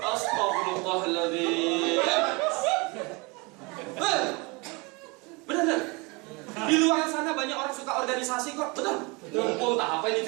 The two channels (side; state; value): left; quieter; 27.7 dB